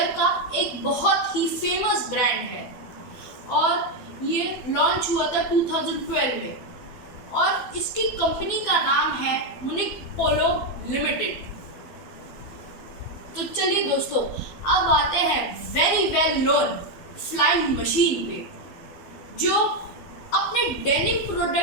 का एक बहुत ही फेमस ब्रांड है और ये लॉन्च हुआ था 2012 में और इसकी कंपनी का नाम है मुनिक पोलो लिमिटेड। तो चलिए दोस्तों, अब आते हैं very well known flying machine पे, जो अपने डेनिम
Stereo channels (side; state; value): right; late; 12 ms